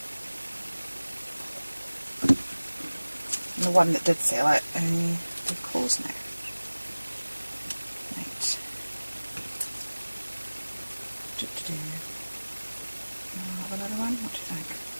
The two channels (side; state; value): both; inverted; correlation -1.00